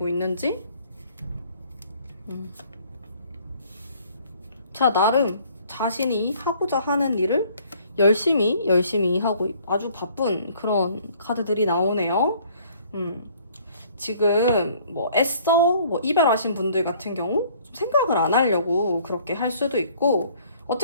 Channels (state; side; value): inverted; both; correlation -0.58